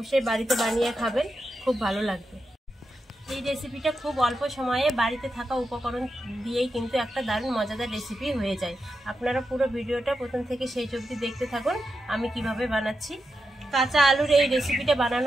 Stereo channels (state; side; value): normal; both; correlation 0.88